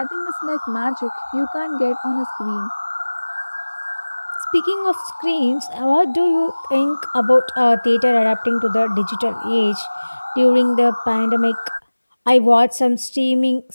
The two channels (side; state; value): both; inverted; correlation -1.00